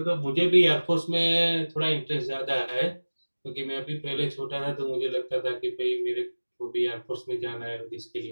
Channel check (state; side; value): inverted; both; correlation -1.00